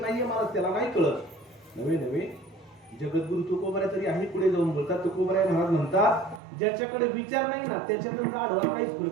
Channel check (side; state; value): left; drops out; at 6.4 s